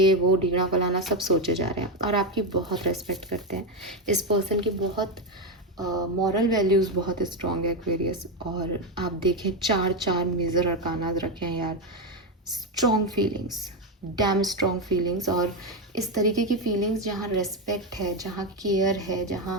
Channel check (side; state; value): both; normal; correlation 0.10